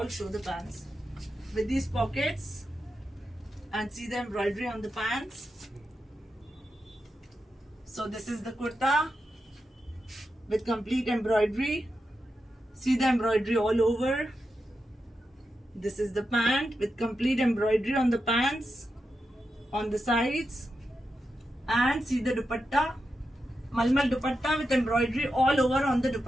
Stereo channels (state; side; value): normal; both; correlation 0.88